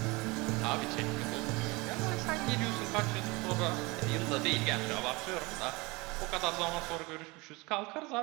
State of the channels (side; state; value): left; quieter; 24.7 dB